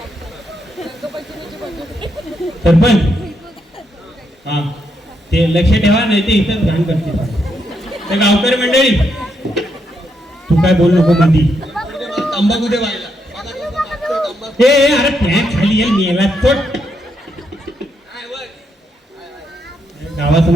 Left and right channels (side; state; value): both; normal; correlation 0.79